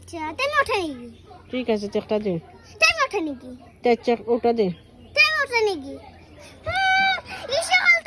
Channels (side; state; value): both; identical; correlation 1.00